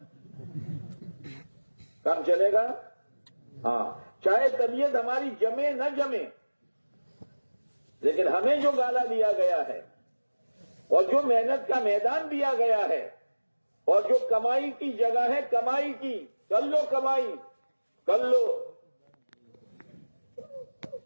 کام چلے گا۔ ہاں، چاہے طبیعت ہماری جمے نہ جمے، لیکن ہمیں جو گالا دیا گیا ہے اور جو محنت کا میدان دیا گیا ہے اور جو کمائی کی جگہ ہے، کمائی کی، کر لو کمائی، کر لو،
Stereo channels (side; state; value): both; inverted; correlation -1.00